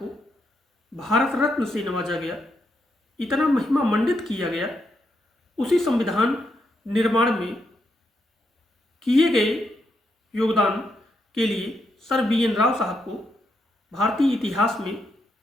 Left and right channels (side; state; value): both; normal; correlation 0.81